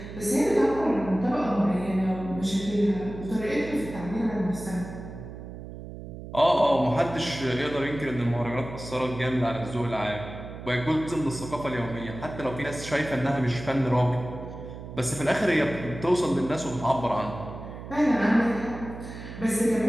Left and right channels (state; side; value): noise; right; hum, 11 dB below the sound